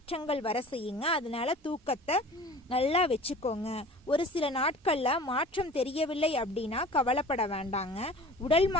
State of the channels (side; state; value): both; normal; correlation 0.42